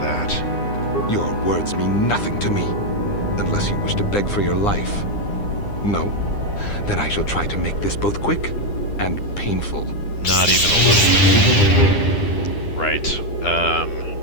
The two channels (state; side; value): late; right; 9.9 ms